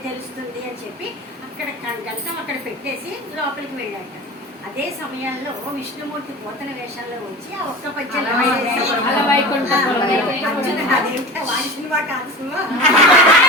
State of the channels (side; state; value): both; normal; correlation 0.32